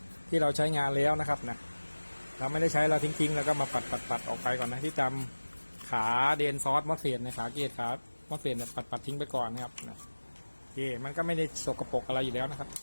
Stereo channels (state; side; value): inverted; both; correlation -1.00